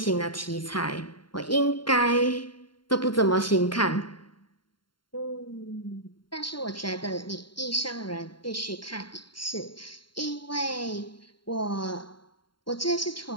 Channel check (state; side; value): late; right; 0.72 ms